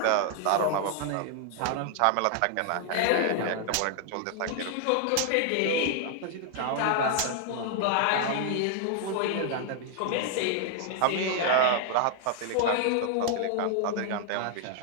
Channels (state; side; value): different; both; correlation 0.00